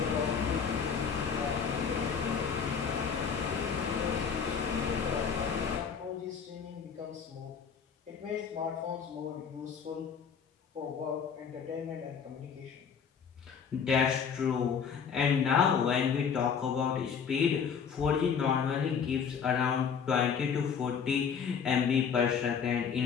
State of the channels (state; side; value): quieter; right; 6.7 dB